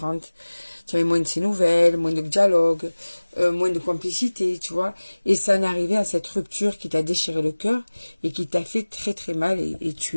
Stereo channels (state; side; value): inverted; both; correlation -1.00